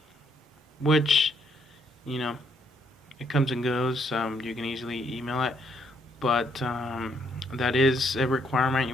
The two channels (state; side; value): normal; both; correlation 0.71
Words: which, you know, it comes and goes. You can easily email it, but that is a requirement.